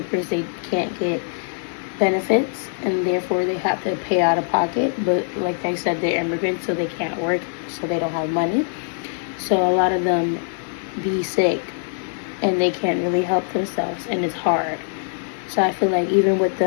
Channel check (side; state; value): right; silent; digital silence